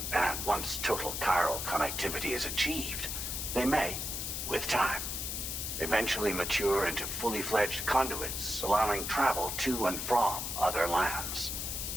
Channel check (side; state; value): left; noise; hiss, 3 dB below the sound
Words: and once total chiral connectivity is achieved, they may, with time, eventually mature into fully fledged conduits, allowing travel to and from other lands.